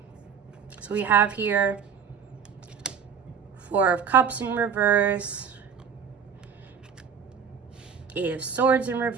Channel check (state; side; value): quieter; left; 6.8 dB